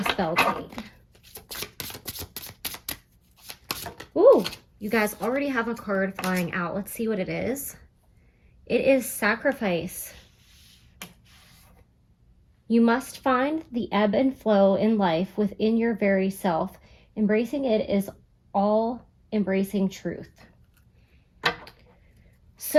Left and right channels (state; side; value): identical; both; correlation 1.00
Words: Beltane. Ooh, you guys already have a card flying out. Let's see what it is. It is sacrifice. You must find the ebb and flow in life within your very self. Embracing it is all embracing truth.